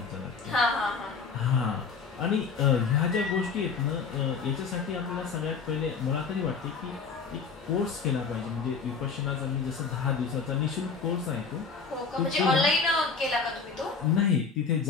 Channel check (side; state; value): right; quieter; 5.2 dB